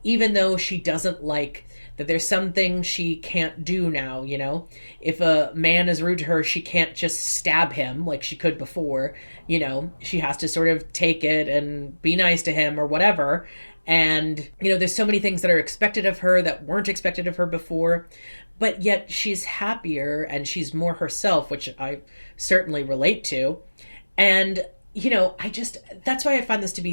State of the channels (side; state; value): both; inverted; correlation -1.00